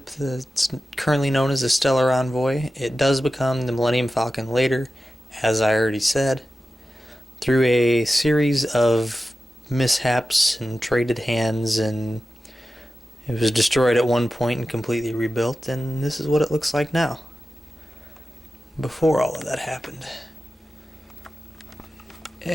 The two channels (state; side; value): normal; both; correlation 0.93